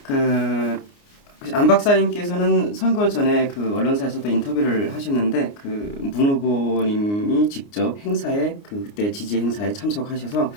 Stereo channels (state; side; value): late; right; 29 ms